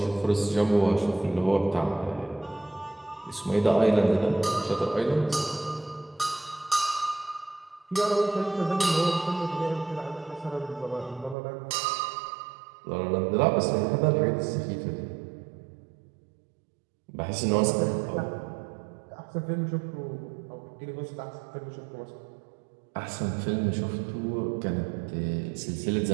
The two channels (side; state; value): left; drops out; at 11.4 s